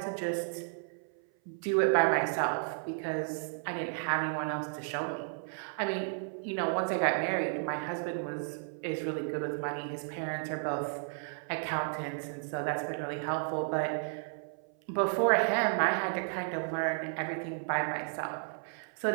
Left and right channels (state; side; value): silent; left; 56 dB below the other